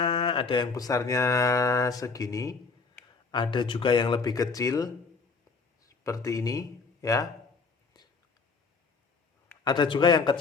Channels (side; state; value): right; quieter; 4.7 dB